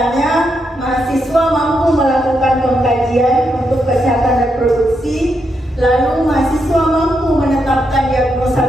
mahasiswa mampu melakukan pengkajian untuk kesehatan reproduksi. Lalu mahasiswa mampu menetapkan diagnosa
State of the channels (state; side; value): normal; both; correlation 0.81